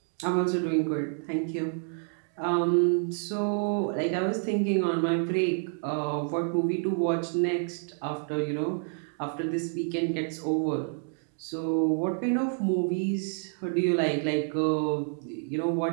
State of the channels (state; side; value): silent; left; 59 dB below the other